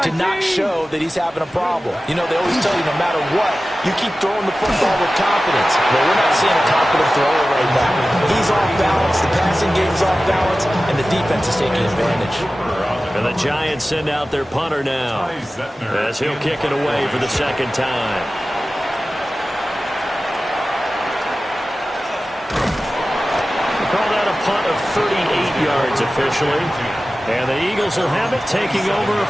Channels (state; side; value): normal; both; correlation 0.96